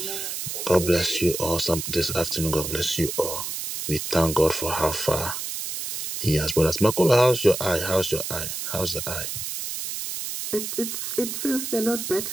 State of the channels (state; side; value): noise; right; hiss, 5 dB below the sound